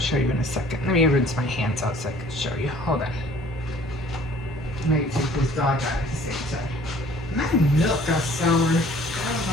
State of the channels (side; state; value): both; normal; correlation 0.53